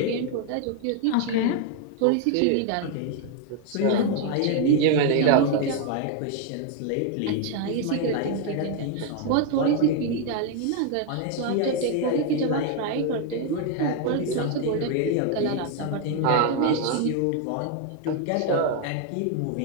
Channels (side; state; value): both; different; correlation 0.01